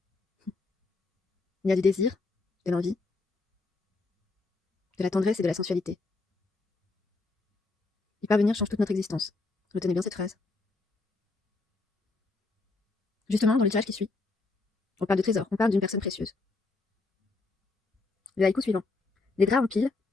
Il y a du désir, de l'envie, de la tendresse et de la sensualité. Y parvenir change toute notre existence. Retenez bien cette phrase. Justement, dans le tirage qui suit, on parle de trésor, on parle d'une personne précieuse. Le haïku suivant. Les draps en pile,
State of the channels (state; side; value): quieter; right; 3.6 dB